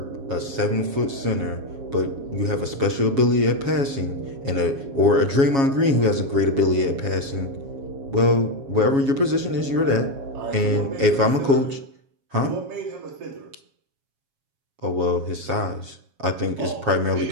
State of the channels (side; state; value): left; late; 7.3 ms